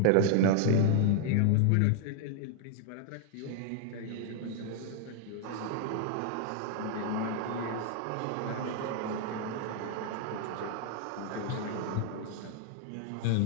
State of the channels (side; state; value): both; different; correlation 0.00